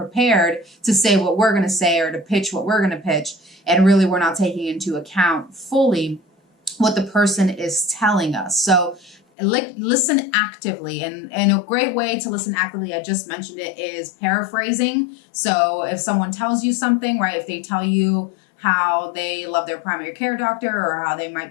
to say what we're going to say or to pitch what we're going to pitch. And really we're not taking into account fully what the person is telling us. So listen actively, and a great way to listen actively, I just mentioned it, is paraphrasing. So if someone tells you something, right, if they tell you how they love their primary care doctor or how they might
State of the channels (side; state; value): right; drops out; at 9.2 s